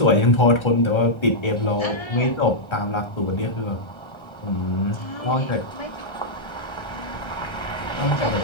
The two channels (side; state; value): right; late; 1.3 ms